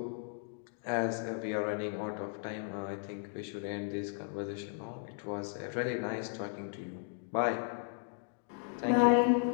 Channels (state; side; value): silent; right; 54 dB below the other